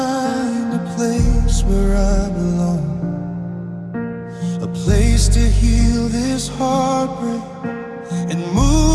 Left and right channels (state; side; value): identical; both; correlation 1.00